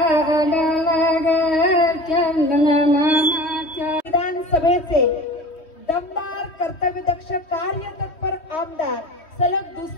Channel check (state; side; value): late; right; 3.1 ms